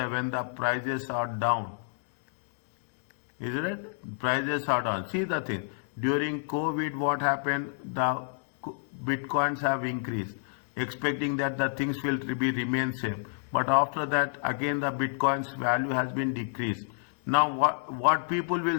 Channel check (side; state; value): right; silent; digital silence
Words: the prices are down. Is it right? Prices are down. See the thing. During COVID, what happened? The bitcoins have increased, expecting that the things will remain same. But after that, again the bitcoin's value has been decreased. Now what people will